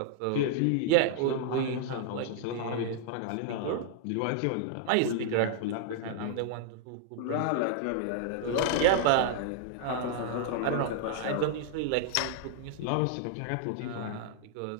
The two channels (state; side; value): different; both; correlation 0.00